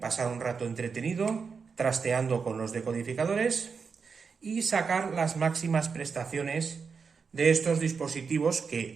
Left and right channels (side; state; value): left; quieter; 5.5 dB